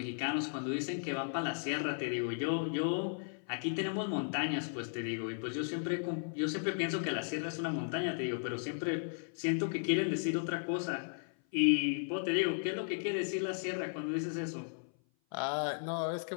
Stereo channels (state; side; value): silent; right; 54 dB below the other